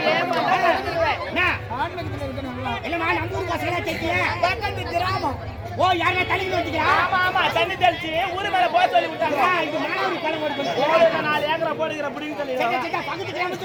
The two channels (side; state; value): both; identical; correlation 1.00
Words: இல்லம்மா நம்ம ஊர் பசங்களா தெரிய பக்கத்து கிராமம். ஓ யாரா தண்ணி வச்சுக்கிறா? ஆமா ஆமா, தண்ணி தெளிச்சு ஊரு மேல போக சொல்லி விட்டாங்க. இது மாணவரி கிளம்ப இருக்கு. 4 ஏக்கரை போடுகிற புடிங்க சொல்லி. பக்கத்து கிராமம்